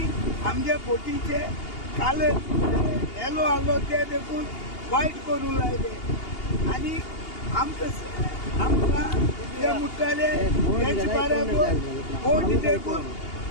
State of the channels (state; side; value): late; right; 2.8 ms